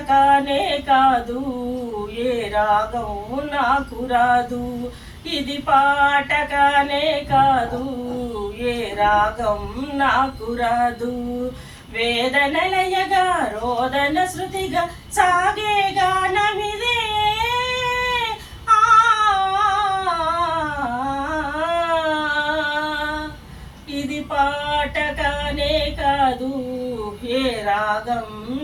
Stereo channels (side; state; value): both; identical; correlation 1.00